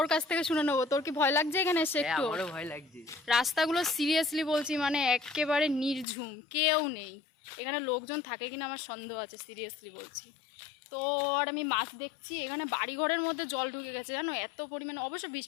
কাছ থেকে শুনে নেবো, তোর কি ভয় লাগছে এখানে এসে? একটু আমারও ভয় লাগছে। রাস্তাগুলো সিরিয়াসলি বলছি, মানে একেবারে নির্ঝুম, কেউ নেই। এখানে লোকজন থাকে কিনা আমার সন্দেহ আছে, সিরিয়াসলি বলছি। তো আর আমি মাছ দেখছি, এখানে বাড়িঘরের মধ্যে জল ঢুকে গেছে জানো, এত পরিমাণে। অবশ্য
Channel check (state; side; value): drops out; right; at 6.1 s